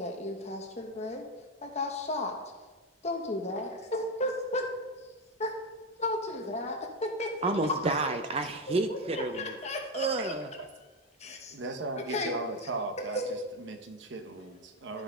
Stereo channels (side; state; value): both; normal; correlation 0.11